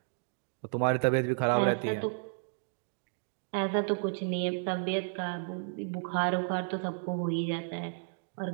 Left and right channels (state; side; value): silent; left; digital silence